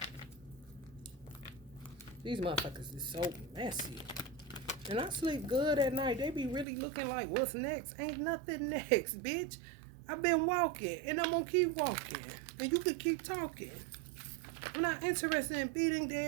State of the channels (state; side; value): drops out; left; at 6.7 s